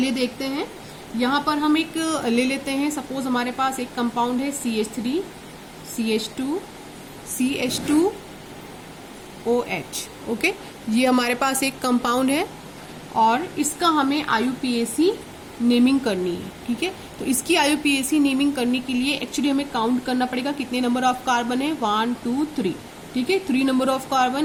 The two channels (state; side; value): identical; both; correlation 1.00